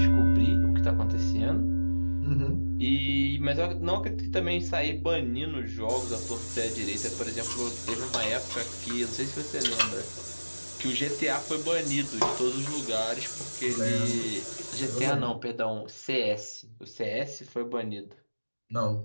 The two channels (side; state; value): both; inverted; correlation -1.00